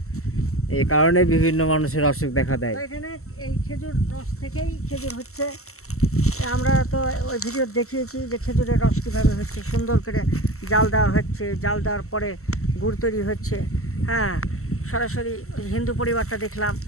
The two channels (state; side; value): late; right; 0.63 ms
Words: এই কারণে বিভিন্ন মানুষের অসুখ দেখা দেয়। এখানে এই খেজুর রস থেকেই খেজুর হচ্ছে। আমরা তো ওই ভিডিও দেখিয়েছি যে খেজুরের রস কীভাবে হচ্ছে, সুন্দর করে জাল দেওয়া হচ্ছে, জাল দেওয়ার পরে গুড় তৈরি হচ্ছে। হ্যাঁ, সরাসরি হিন্দু পরিবারটা দেখলাম,